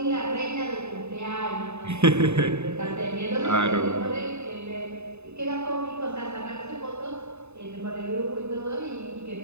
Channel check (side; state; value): left; late; 0.81 ms